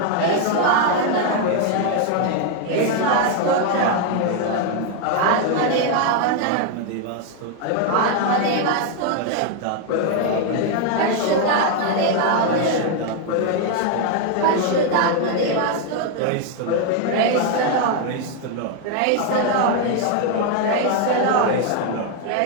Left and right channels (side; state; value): both; different; correlation 0.01